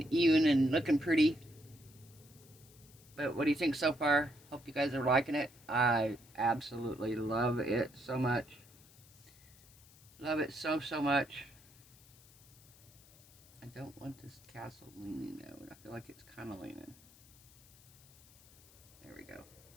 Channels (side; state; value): left; noise; hiss, 24 dB below the sound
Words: even and looking pretty. But what do you think so far? Hope you guys are liking it. I absolutely love it so much. Love it so much. I don't want this castle leaning though. I feel like it's kind of leaning. There we go.